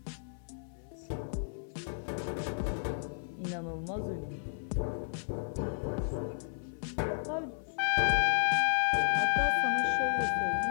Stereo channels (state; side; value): silent; right; 56 dB below the other